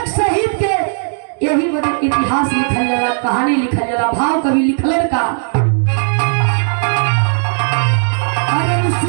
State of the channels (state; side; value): silent; left; digital silence